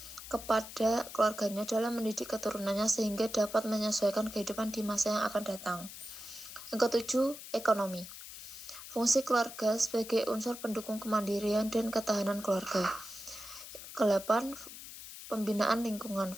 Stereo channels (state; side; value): noise; left; hiss, 13 dB below the sound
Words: kepada keluarganya dalam mendidik keturunannya sehingga dapat menyesuaikan kehidupan di masa yang akan datang. Yang ketujuh, ekonomi. Fungsi keluarga sebagai unsur pendukung kemandirian dan ketahanan keluarga. Kedelapan, pembinaan lingkungan.